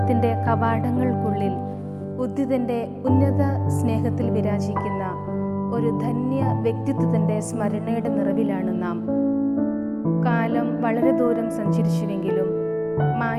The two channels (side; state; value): both; identical; correlation 1.00